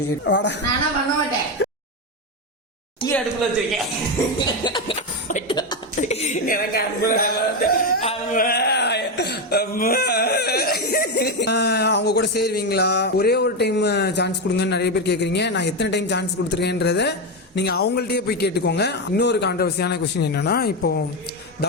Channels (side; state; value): both; normal; correlation 0.10